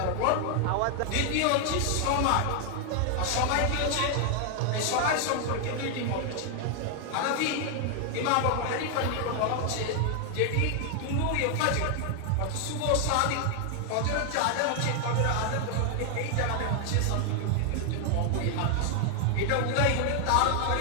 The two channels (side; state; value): both; different; correlation 0.00